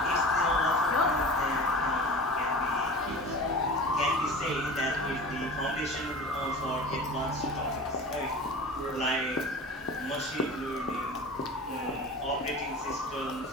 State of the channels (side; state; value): both; normal; correlation 0.36